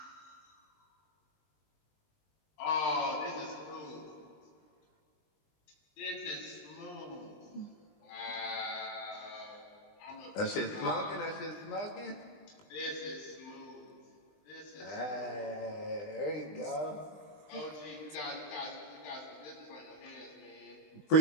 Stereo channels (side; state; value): right; late; 20 ms